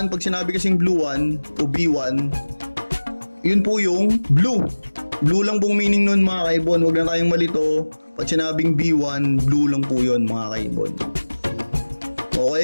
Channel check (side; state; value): both; inverted; correlation -1.00